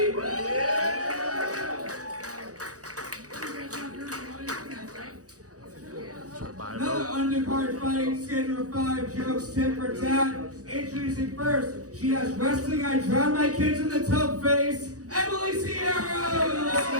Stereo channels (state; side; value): late; left; 0.67 ms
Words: Another undercard fight, schedule 5 jokes, 10 for tat. Introducing first, she has wrestling, I drown my kids in the tub face, Emily Siero!